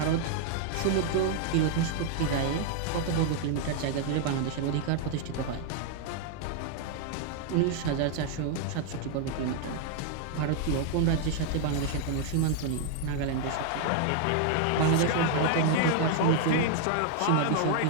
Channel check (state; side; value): different; both; correlation 0.00